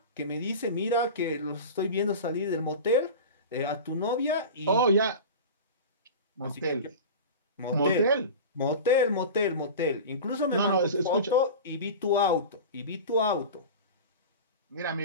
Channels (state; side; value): inverted; both; correlation -0.31